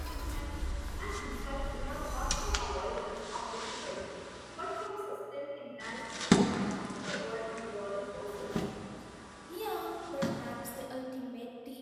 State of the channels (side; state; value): both; identical; correlation 1.00